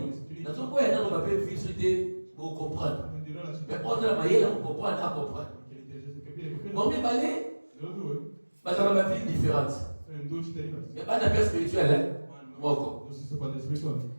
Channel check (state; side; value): inverted; both; correlation -1.00